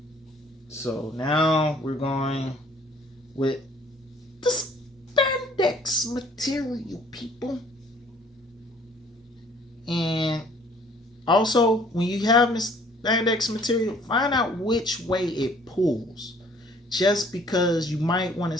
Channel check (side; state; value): both; normal; correlation 0.57